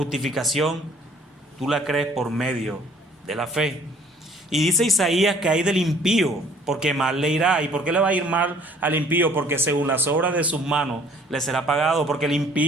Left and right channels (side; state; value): both; normal; correlation 0.57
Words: tú la crees por medio de la fe. Y dice Isaías que hay del impío, porque mal le irá. ¿Y por qué le va a ir mal al impío? Porque según las obras de sus manos le será pagado. Porque el